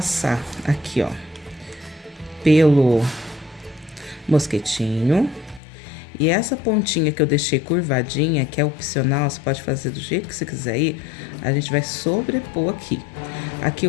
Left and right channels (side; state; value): right; drops out; at 5.6 s